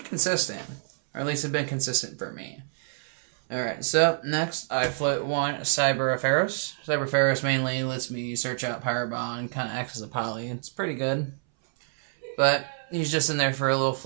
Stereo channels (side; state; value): left; silent; 60 dB below the other